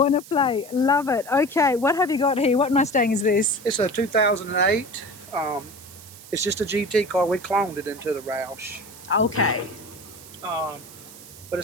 play. Love it. Okay, what have you got here? What Mustang is this? It's a 2008. It's just a GT car. We cloned it into the Roush. Okay. But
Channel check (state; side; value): noise; right; hiss, 18 dB below the sound